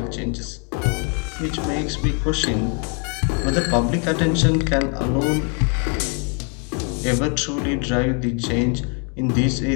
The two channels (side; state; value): right; quieter; 37.6 dB